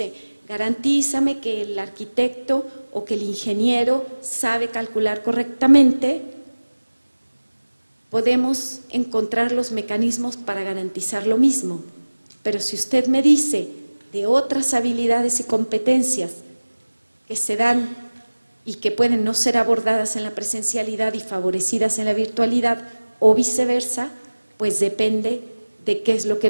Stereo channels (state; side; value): inverted; both; correlation -1.00